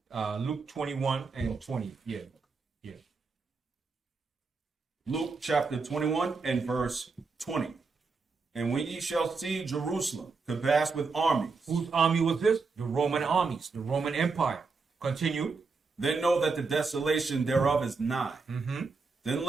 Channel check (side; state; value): left; quieter; 4.5 dB